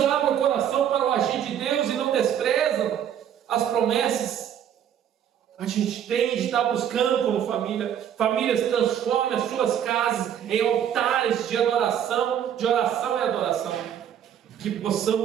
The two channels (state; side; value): quieter; left; 9.5 dB